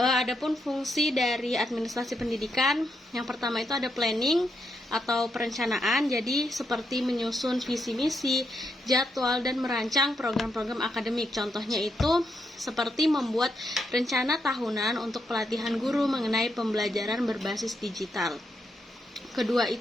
fungsi dari administrasi pendidikan, yang pertama itu ada planning atau perencanaan, jadi seperti menyusun visi misi, jadwal, dan merancang program-program akademik. Contohnya itu seperti membuat rencana tahunan untuk pelatihan guru mengenai pembelajaran berbasis digital. Kedua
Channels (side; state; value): both; normal; correlation 0.81